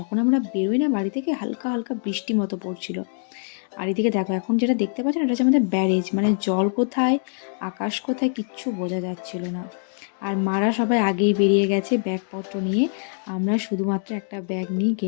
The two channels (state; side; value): silent; right; 63 dB below the other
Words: আমরা বেরোই না বাড়ি থেকে, হালকা হালকা বৃষ্টি মতো পড়ছিল। আর এদিকে দেখো এখন যেটা দেখতে পাচ্ছেন, এটা হচ্ছে আমাদের ব্যারেজ, মানে জল কোথায় আকাশ কোথায় কিচ্ছু বোঝা যাচ্ছিল না। আর মারা সবাই আগেই বেরিয়ে গেছে ব্যাগপত্র নিয়ে। আমরা শুধুমাত্র একটা ব্যাগ নিয়ে